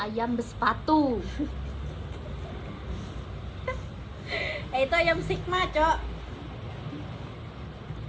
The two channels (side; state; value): both; identical; correlation 1.00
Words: bersepatu. Itu ayam Sigma, Cok.